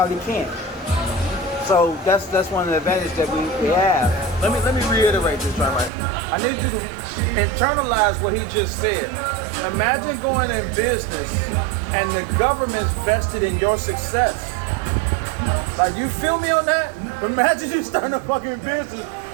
can't. So that's one of the advantages that we have. Let me reiterate this right. I need you to internalize what he just said. Imagine going in business and the government's vested in your success. Like, you feel me on that? Imagine you starting a fucking business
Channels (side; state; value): left; drops out; at 5.9 s